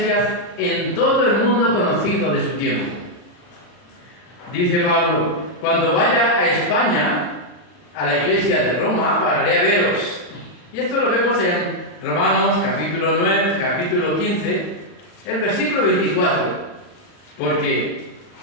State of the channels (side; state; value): right; late; 40 ms